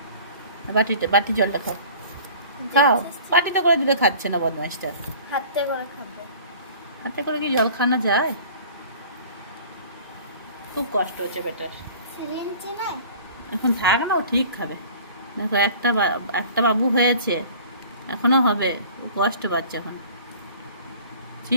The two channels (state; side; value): inverted; both; correlation -0.46